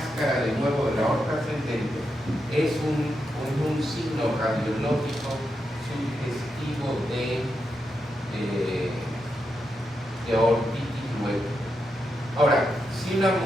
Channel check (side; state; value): both; normal; correlation 0.85